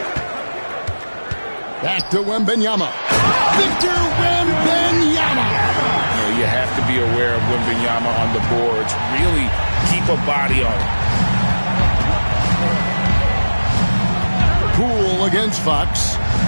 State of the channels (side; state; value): both; inverted; correlation -1.00